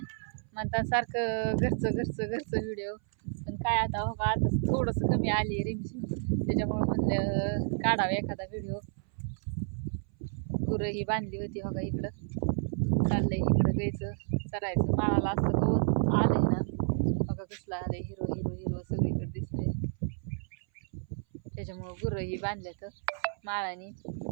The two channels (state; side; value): silent; left; 57 dB below the other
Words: म्हणतात सारखं घरचं घरचं घरचं व्हिडिओ, पण काय आता हो का आता थोडंसं कमी आली रिमझिम, त्याच्यामुळं म्हणलं काढावं एखादा व्हिडिओ. गुरं ही बांधली होती हो का, इकडं चाललंय इकडं गायचं चरायचं. माळाला असं गवत आलंय ना बघा, कसलं आलंय हिरो हिरो हिरो सगळीकडे दिसतंय. त्याच्यामुळं गुरं ही बांधल्यात माळानी,